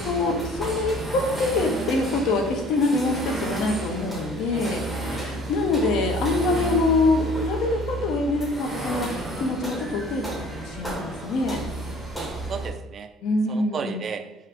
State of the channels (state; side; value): normal; both; correlation 0.52